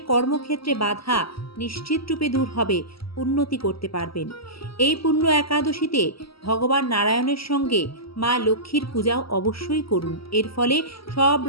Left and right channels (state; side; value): late; right; 0.75 ms